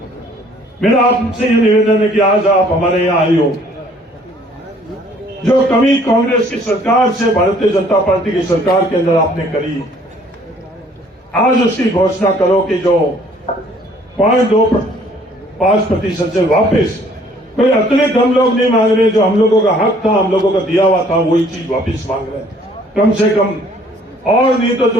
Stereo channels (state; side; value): normal; both; correlation 0.59